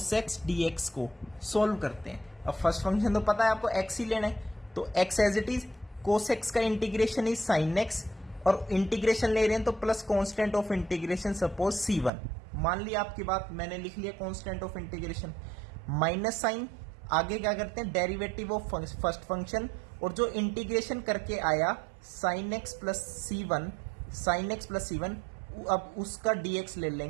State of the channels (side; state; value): left; drops out; at 12.1 s